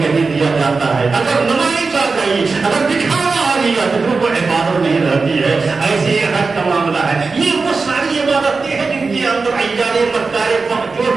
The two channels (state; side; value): quieter; left; 4.3 dB